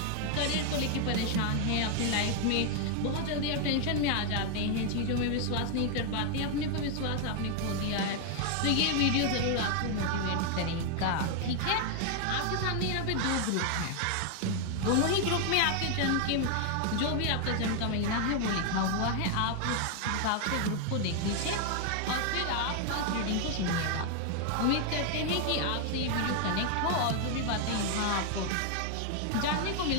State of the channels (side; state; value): both; different; correlation 0.00